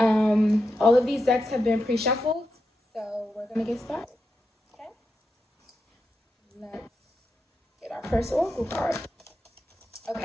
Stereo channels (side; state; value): both; normal; correlation 0.87